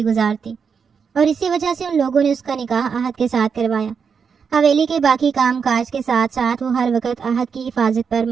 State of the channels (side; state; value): left; quieter; 6.2 dB